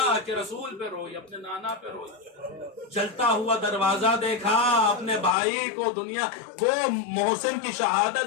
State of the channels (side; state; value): right; drops out; at 5.4 s